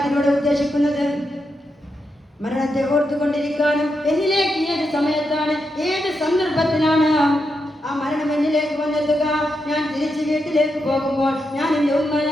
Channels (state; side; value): normal; both; correlation 0.85